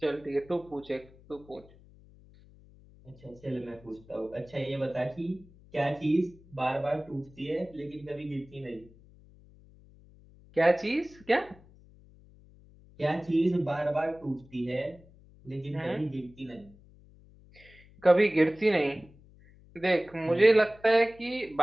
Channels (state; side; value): noise; left; hum, 25 dB below the sound